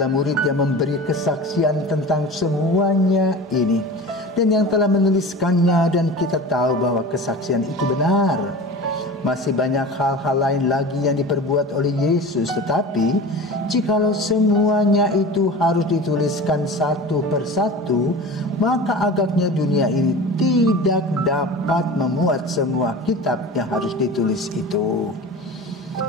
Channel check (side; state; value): both; normal; correlation 0.35